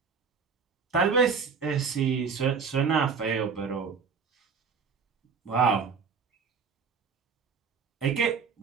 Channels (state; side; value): quieter; left; 5.7 dB